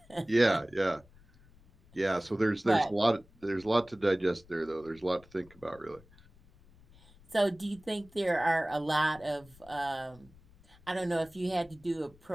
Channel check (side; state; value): left; noise; rumble, 26 dB below the sound